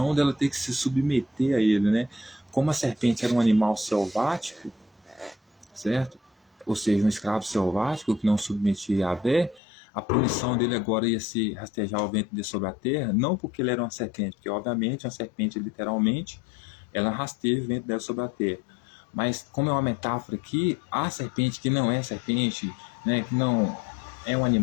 dela ter que se submeter a ele, né? Como a serpente era um animal selvático, certo? Ou seja, um escravo selvático que não submetia a Yahvé, a punição dele agora ia ser rastejar o ventre dele sobre a terra, não porque ele era uma serpente, porque obviamente uma serpente literalmente, ela rasteja o ventre dela sobre a terra. Mas como é uma metáfora aqui, a serpente que não é serpente, né, que não é um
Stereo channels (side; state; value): right; drops out; at 9.6 s